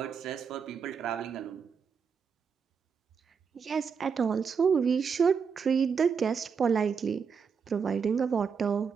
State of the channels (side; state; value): left; quieter; 6.2 dB